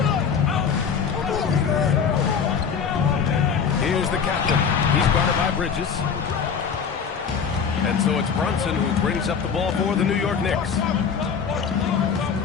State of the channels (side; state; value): right; quieter; 6.5 dB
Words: Here's the captain. He's guarded by Bridges. And so it's Brunson who brings up the ball for the New York Knicks.